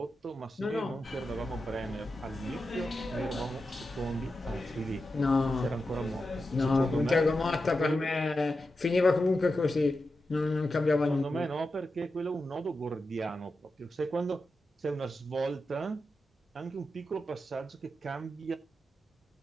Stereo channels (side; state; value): both; normal; correlation 0.90